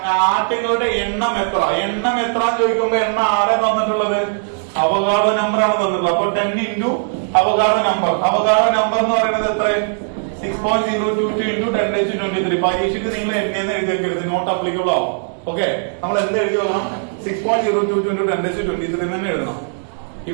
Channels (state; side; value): silent; left; digital silence